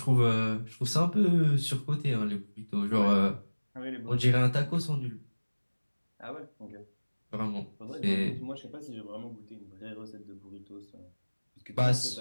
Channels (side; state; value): both; inverted; correlation -1.00